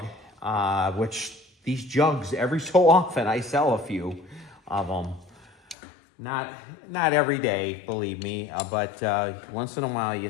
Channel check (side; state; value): right; drops out; at 5.8 s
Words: which these jugs, every so often, I sell a few of them. Not every day, believe me, but once in a while you